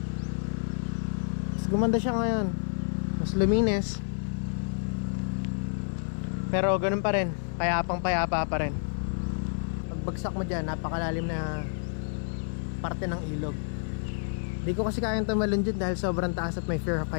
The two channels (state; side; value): silent; right; 58 dB below the other